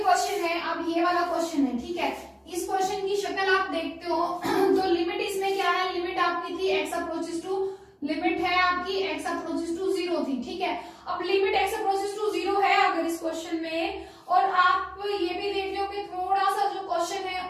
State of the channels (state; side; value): identical; both; correlation 1.00